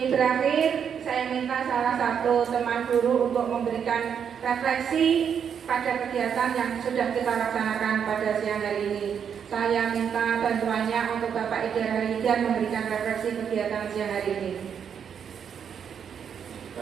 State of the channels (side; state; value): left; quieter; 7.7 dB